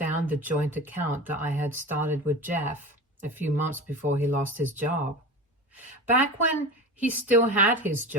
the joint account that I had started with Jeff a few months before he lost his job. Back when he still had his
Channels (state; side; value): normal; both; correlation 0.30